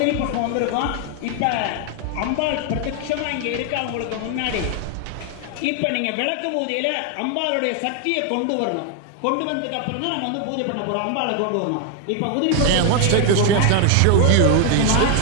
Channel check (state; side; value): different; both; correlation 0.00